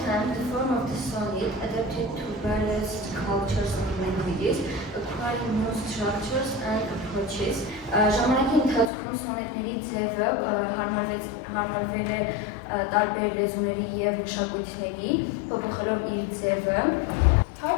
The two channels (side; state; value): right; drops out; at 8.9 s